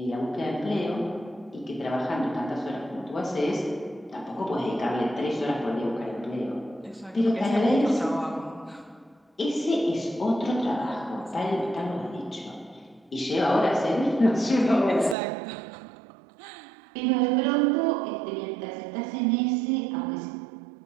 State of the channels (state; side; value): drops out; left; at 15.2 s